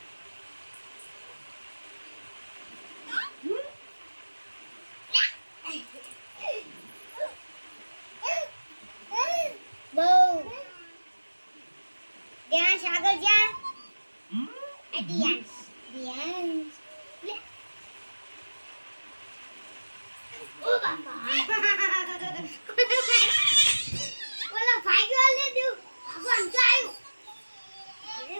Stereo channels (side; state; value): both; inverted; correlation -1.00